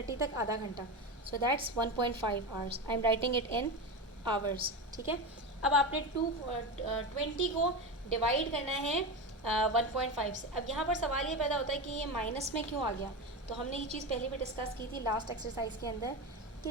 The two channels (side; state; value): both; normal; correlation 0.20